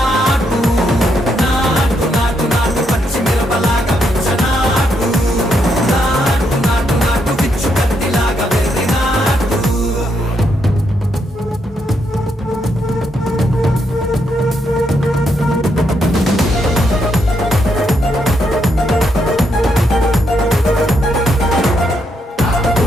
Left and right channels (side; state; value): both; normal; correlation 0.78